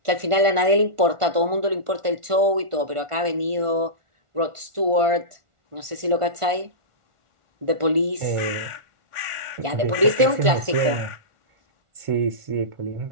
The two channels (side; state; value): left; late; 1.4 ms